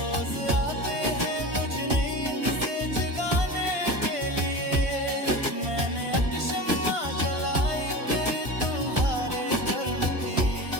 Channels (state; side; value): late; left; 1.5 ms